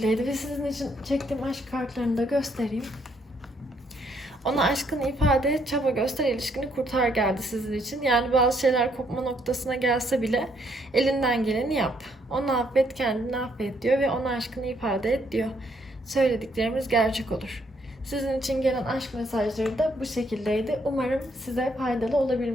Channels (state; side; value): normal; both; correlation 0.70